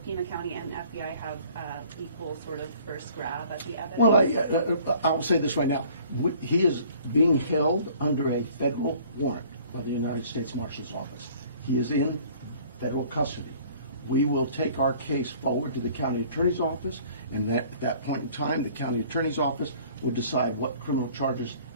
Pima County and FBI have equal sort of first grab at the evidence? Well, I will say this right now. He is being held under a federal warrant by the United States Marshal's Office. He is in federal custody. We will take our case forward to the county attorney's office, and at that point in time, the county attorney's office will decide what criminal charges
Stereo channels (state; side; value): inverted; both; correlation -0.53